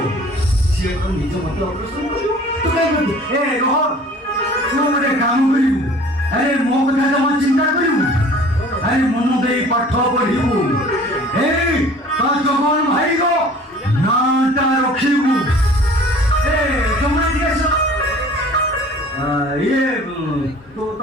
ସିଏ ତ ନିଜ ମତେ ଅପରେସନ କରିବ। ତୁ କାଇଁ କରିବୁ? ଏ ରୋହନ, ତୁ ଗୋଟେ କାମ କରିବୁ। ଆରେ ମୋ କଥା ଜମା ଚିନ୍ତା କରିବୁ। ଆରେ ମନ ଦେଇ ପାଠ ପଢିବୁ। ଏଇ ତା ଜଗନ ଭାଇର ନାଁଟା ରଖିବୁ। ଏ ଜମା ଟିକେ ଇଏ ତୁ ତ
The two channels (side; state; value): both; normal; correlation 0.48